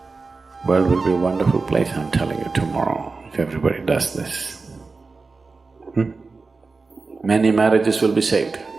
World will be a wonderful place, I'm telling you, tomorrow, if everybody does this. Many marriages will be saved.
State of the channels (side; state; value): left; quieter; 4.1 dB